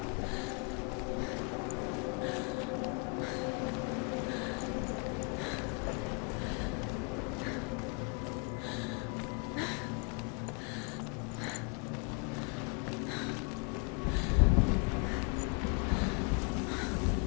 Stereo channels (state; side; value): quieter; right; 34.4 dB